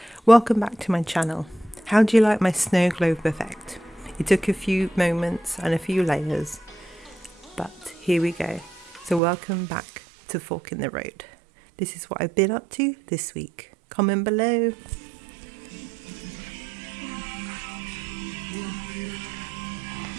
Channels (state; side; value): drops out; left; at 9.2 s